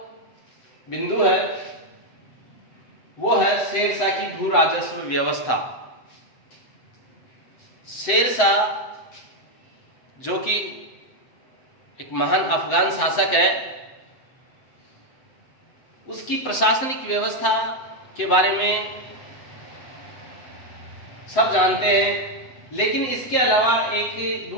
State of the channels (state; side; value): late; right; 7.8 ms